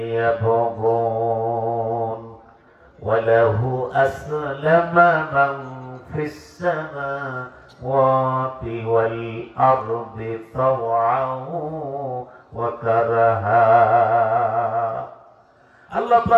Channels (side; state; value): both; identical; correlation 1.00